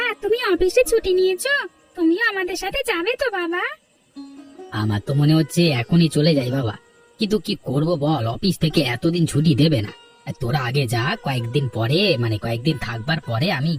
তুমি অফিসে ছুটি নিয়েছো, তুমিও আমাদের সাথে যাবে তো বাবা? আমার তো মনে হচ্ছে এখনই চলে যাই বাবা, কিন্তু কি করব বল, অফিস থেকে এতদিন ছুটি দেবে না। তোরা আগে যা, কয়েকদিন পরে মানে কয়েকদিন থাকবার পরে আমি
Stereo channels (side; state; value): both; identical; correlation 1.00